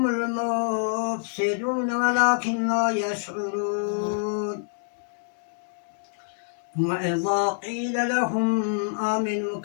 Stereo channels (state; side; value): silent; right; digital silence